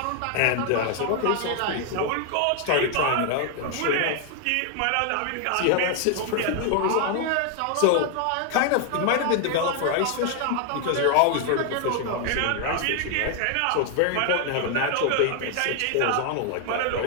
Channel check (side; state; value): both; different; correlation 0.00